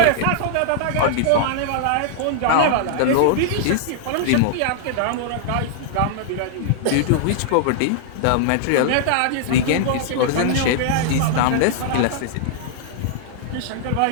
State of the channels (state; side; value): different; both; correlation -0.01